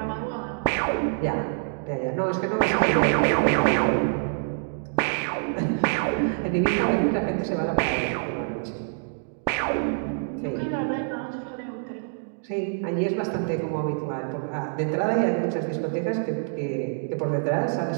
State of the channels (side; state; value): left; silent; digital silence